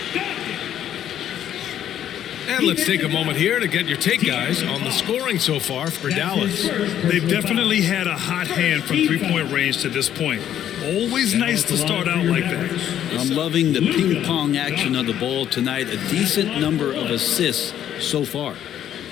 And let's take a moment here to get your take, guys, on the scoring so far for Dallas. They've definitely had a hot hand from three-point range to this point. Always nice to start out like that. I'm loving the ping-pong action of the ball tonight. A decent number of assists so far.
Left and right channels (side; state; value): right; quieter; 10.7 dB